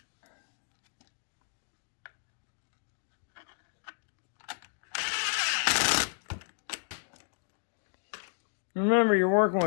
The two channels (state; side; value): silent; right; digital silence